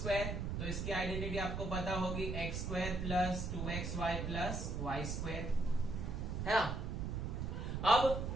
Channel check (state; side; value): noise; right; rumble, 2 dB below the sound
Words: तो इसकी आइडेंटिटी आपको पता होगी x square plus 2xy plus y square है ना. अब